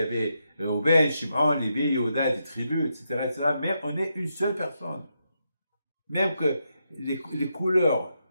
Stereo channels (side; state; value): both; inverted; correlation -0.83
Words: avait Reuben, Shimon, Lévi, Yehuda, des tribus, etc. Mais on est une seule personne. Même que les couleurs,